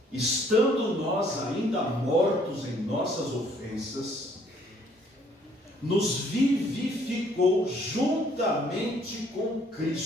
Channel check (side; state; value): both; normal; correlation 0.63